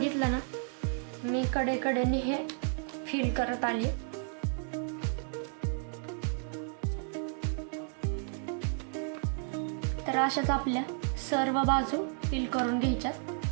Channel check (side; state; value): left; silent; 56 dB below the other